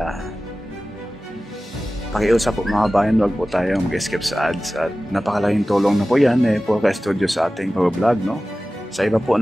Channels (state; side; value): normal; both; correlation 0.96